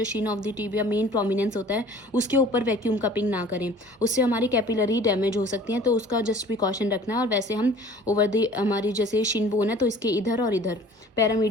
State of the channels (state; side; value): normal; both; correlation 0.48